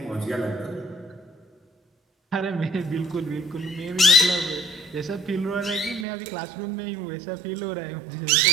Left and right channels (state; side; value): drops out; left; at 6.1 s